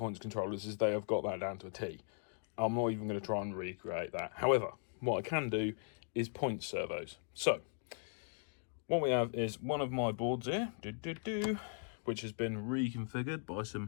controllers is they have got that down to a T. I'm not even going to try and recreate that. However, what I can do is point servos. So, what we have is one of my boards here, which has been reconfigured by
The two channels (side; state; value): right; silent; 52 dB below the other